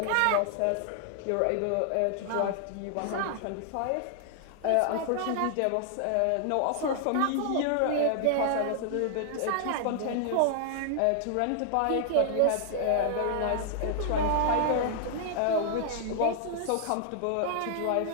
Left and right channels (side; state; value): both; different; correlation -0.01